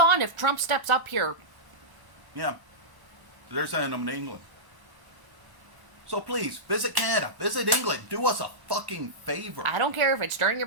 if Trump steps up here. Yeah. They're sending them to England. So please, visit Canada. Visit England. Do us a fucking favor. I don't care if it's during your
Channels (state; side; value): late; left; 1.1 ms